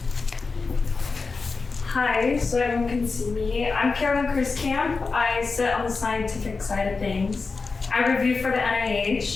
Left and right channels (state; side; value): quieter; right; 4.3 dB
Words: Hi, so everyone can see me. I'm Carolyn Kriskamp. I sit on the scientific side of things. I review for the